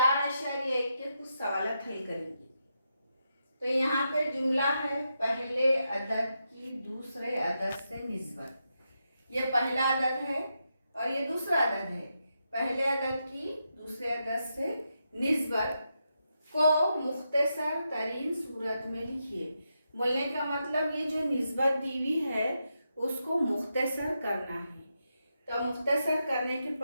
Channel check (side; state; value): both; inverted; correlation -0.85